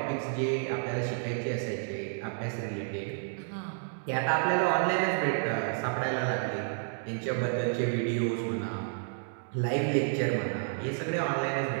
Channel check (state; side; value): silent; left; digital silence